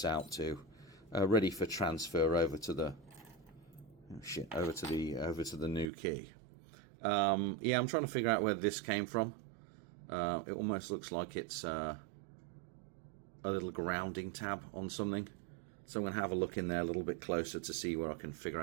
out to ready for transfer over to the over to the new key. Yeah, I'm trying to figure out where this came from. It almost looks like it's a little grounding tab on something, so I'm going to have a look in there a little bit closer to see where I can figure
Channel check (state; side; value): drops out; left; at 5.9 s